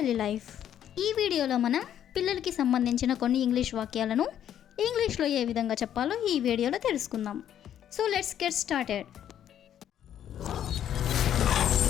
life. ఈ వీడియోలో మనం పిల్లలకి సంబంధించిన కొన్ని English వాక్యాలను ఇంగ్లీష్లో ఏ విధంగా చెప్పాలో ఈ వీడియోలో తెలుసుకుందాం. So let's get started.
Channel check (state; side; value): quieter; right; 10.3 dB